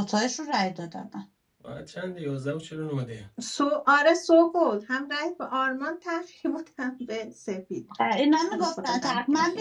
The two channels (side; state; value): both; identical; correlation 1.00